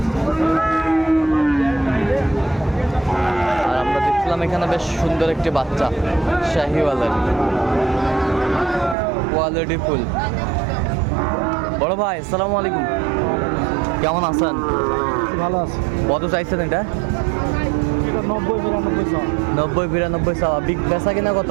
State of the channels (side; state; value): left; drops out; at 9.0 s